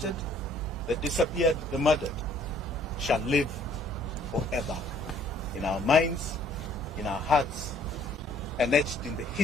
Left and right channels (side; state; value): both; normal; correlation 0.60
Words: the disappeared, the murdered shall live forever in our minds, in our hearts, and etched in the